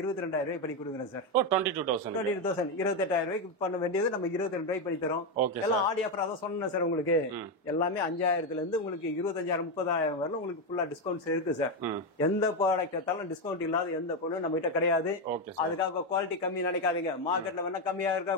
ரூபாய் பண்ணி கொடுக்குறேன் சார். 22,000 28,000 ரூபாய்க்கு பண்ண வேண்டியது நம்ம 22 ரூபாய்க்கு பண்ணி தரோம். எல்லாம் ஆடி ஆஃபர் தான் சொன்னேன் சார் உங்களுக்கு. எல்லாமே 5,000ல இருந்து உங்களுக்கு 25,000 30,000 வரல உங்களுக்கு ஃபுல்லா டிஸ்கவுண்ட்ஸ் இருக்கு சார். எந்த ப்ராடக்ட் எடுத்தாலும் டிஸ்கவுண்ட் இல்லாத எந்த பொருளும் நம்ம கிட்ட கிடையாது. அதுக்காக குவாலிட்டி கம்மி நினைக்காதீங்க. மார்க்கெட்ல வேணா கம்மியா இருக்கா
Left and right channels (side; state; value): both; normal; correlation 0.08